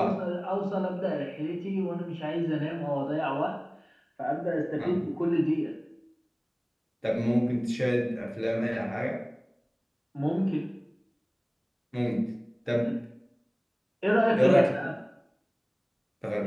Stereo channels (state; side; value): identical; both; correlation 1.00